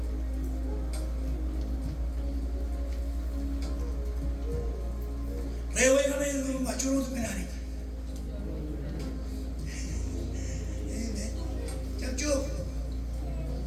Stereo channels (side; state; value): both; identical; correlation 1.00